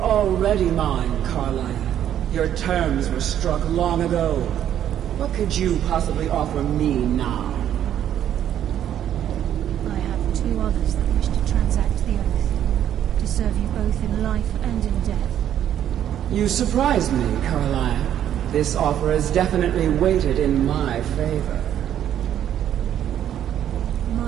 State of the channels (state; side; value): quieter; left; 10.5 dB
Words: mine, Carlia. Your terms were struck long ago. What could you possibly offer me now? I have 2 others that wish to transact the oath, to serve you both in life and in death. You surprised me, Carlisle. This offer is definitely weighted in my favor.